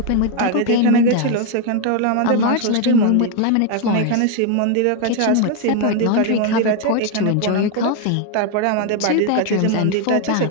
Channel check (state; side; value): different; both; correlation 0.01